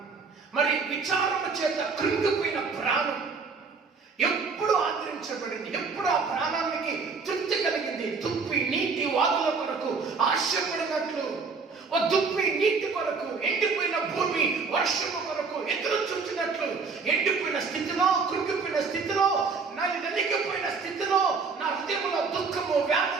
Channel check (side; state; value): left; quieter; 4.8 dB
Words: మరి విచారము చేత కృంగిపోయిన ప్రాణం ఎప్పుడు ఆదరించబడింది? ఎప్పుడు ఆ ప్రాణానికి తృప్తి కలిగింది? దుప్పి నీటి వాగుల కొరకు ఆశపడినట్లు, ఓ దుప్పి నీటి కొరకు, ఎండిపోయిన భూమి వర్షము కొరకు ఎదురు చూచినట్లు, ఎండిపోయిన స్థితిలో, కృంగిపోయిన స్థితిలో, నలిగిపోయిన స్థితిలో, నా హృదయంలో దుఃఖము,